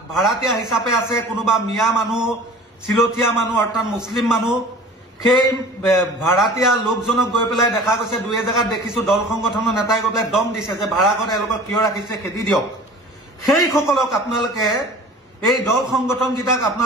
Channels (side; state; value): both; normal; correlation 0.43